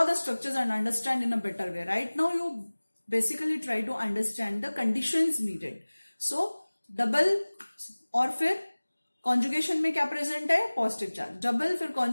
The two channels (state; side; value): inverted; both; correlation -1.00